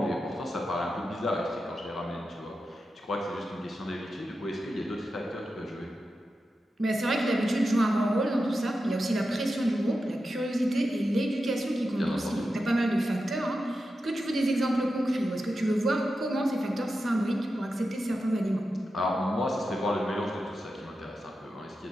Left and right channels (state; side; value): normal; both; correlation 0.90